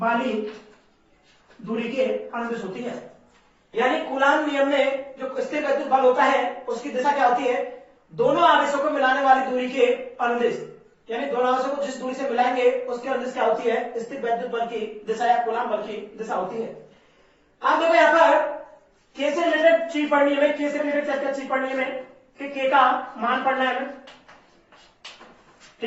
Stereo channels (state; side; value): identical; both; correlation 1.00